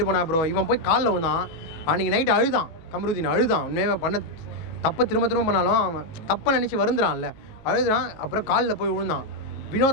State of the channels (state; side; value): late; right; 19 ms